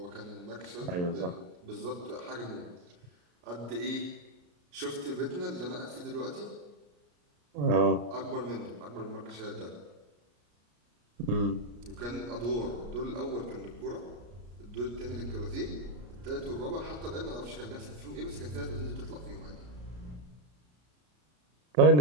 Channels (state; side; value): late; left; 33 ms